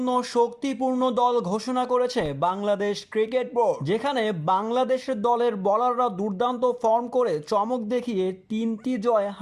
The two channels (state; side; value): identical; both; correlation 1.00